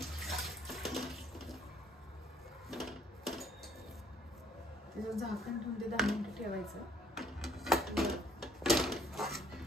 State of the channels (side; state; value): both; normal; correlation 0.63